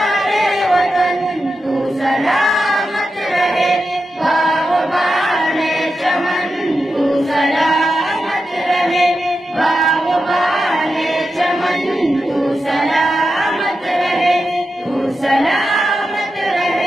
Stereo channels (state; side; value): normal; both; correlation 0.89